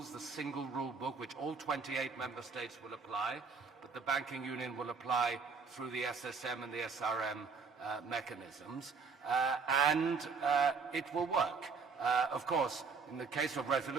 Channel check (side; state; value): left; quieter; 5.1 dB